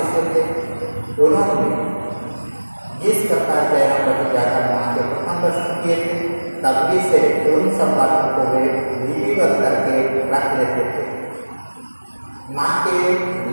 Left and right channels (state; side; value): inverted; both; correlation -1.00